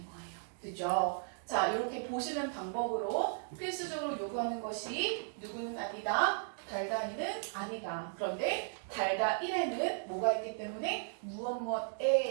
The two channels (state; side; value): silent; left; digital silence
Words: 거예요. 그죠? 자, 이렇게 보시는 방법으로 필수적으로 요구하는 것이 누구는 아니다. 달다 2는 아니다. 그런데 달다 1에는 뭐가 있기 때문에